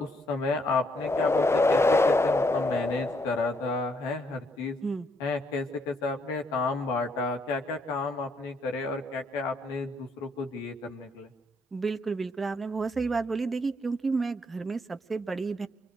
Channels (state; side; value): normal; both; correlation 0.72